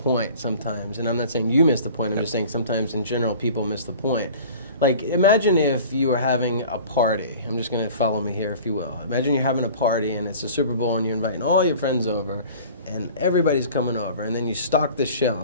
sometimes. And I'm not saying you miss the point. I'm just saying sometimes in general people miss the point. Like, imagine if you were having a party. I'm just going to follow me here, if you will. Imagine you're having a party and it's a Super Bowl and you're inviting all your friends over and everybody's coming over, and then you stock the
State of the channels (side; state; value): both; inverted; correlation -0.43